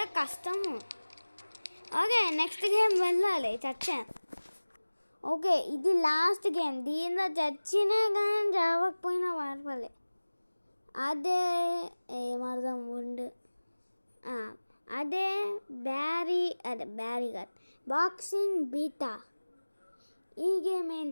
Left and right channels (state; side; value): inverted; both; correlation -1.00